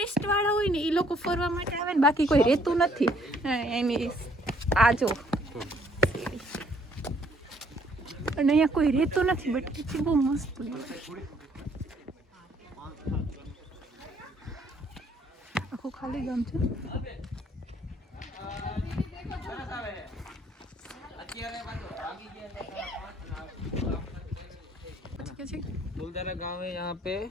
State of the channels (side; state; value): both; normal; correlation 0.64